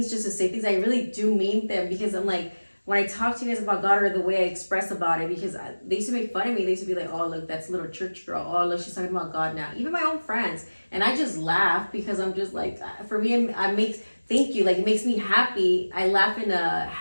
just to say things. I really do mean them, because I'm like, when I talk to you guys about God, or the way I express about it, because they used to make fun of me. They used to be like, oh, look, that's a little church girl. Oh, look, she's talking about God now. Even my own friends. And I just laugh because I'm just like, for me, thank you. Like, it makes me happy. I laugh in a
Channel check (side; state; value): both; inverted; correlation -1.00